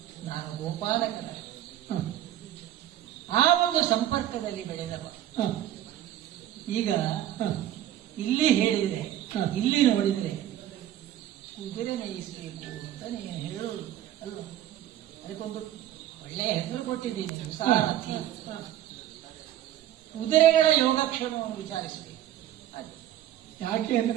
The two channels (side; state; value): left; quieter; 12.3 dB